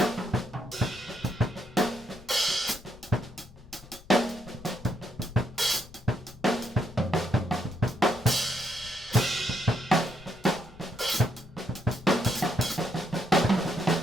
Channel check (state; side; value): noise; left; rumble, 20 dB below the sound